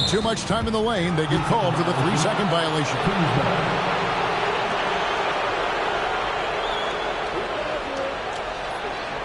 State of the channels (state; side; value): identical; both; correlation 1.00